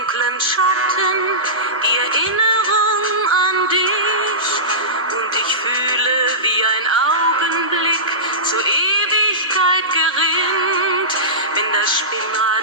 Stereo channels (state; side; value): normal; both; correlation -0.18